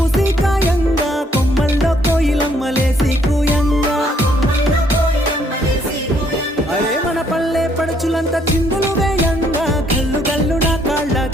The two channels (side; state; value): both; normal; correlation 0.68